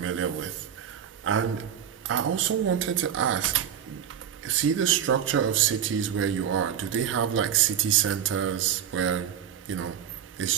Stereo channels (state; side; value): quieter; left; 9.2 dB